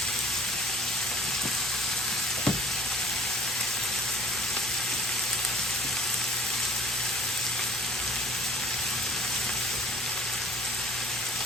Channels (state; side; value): noise; left; hum, 20 dB below the sound